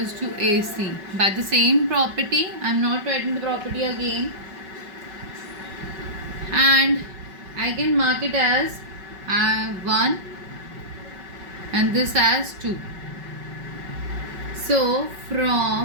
to AC. By the same property, I am not writing the property again, and I can mark it as 1 and this as 2. So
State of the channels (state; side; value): late; left; 5.3 ms